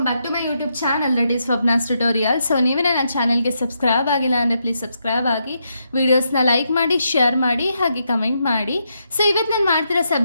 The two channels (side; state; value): both; inverted; correlation -0.81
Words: back to my YouTube channel that is Swapna's tutorial. So ನೀವೇ ನನ್ನ ಚಾನಲ್ಗೆ subscribe ಆಗಿಲ್ಲ ಅಂದರೆ ಪ್ಲೀಸ್ ಸಬ್ಸ್ಕ್ರೈಬ್ ಆಗಿ, ವೀಡಿಯೋಸ್ನ ಲೈಕ್ ಮಾಡಿ, ಶೇರ್ ಮಾಡಿ, ಹಾಗೆ ಕಮೆಂಟ್ ಮಾಡಿ. ಸೊ ಇವತ್ತು ನಾನು ಮಾಡ್ತಿರೋ